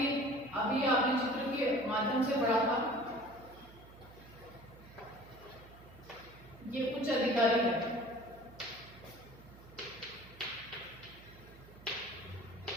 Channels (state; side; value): noise; right; hum, 20 dB below the sound